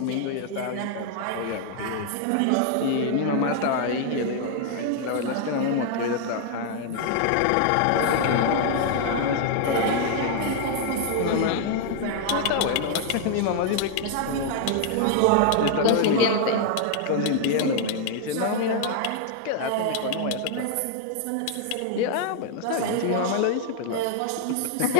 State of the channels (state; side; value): different; both; correlation 0.00